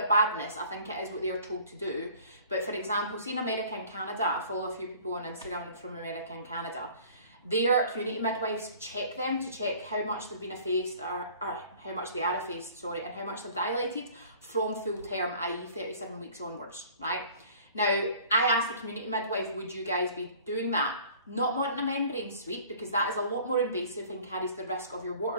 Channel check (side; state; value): both; inverted; correlation -0.50